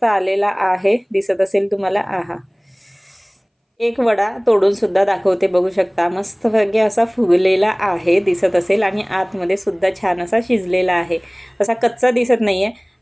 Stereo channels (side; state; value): both; identical; correlation 1.00